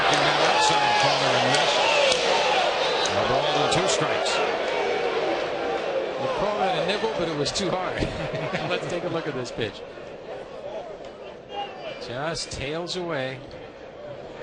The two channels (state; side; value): identical; both; correlation 1.00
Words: that outside corner and missed. A ball and 2 strikes. You call that a nibble, but it was too hard. Let's take a look at this pitch. Just tails away.